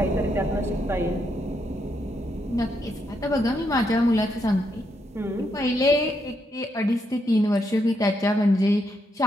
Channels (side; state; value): both; normal; correlation 0.79